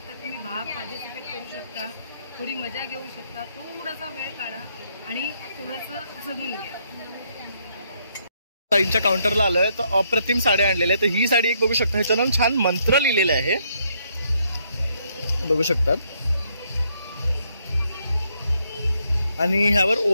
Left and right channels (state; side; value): inverted; both; correlation -0.73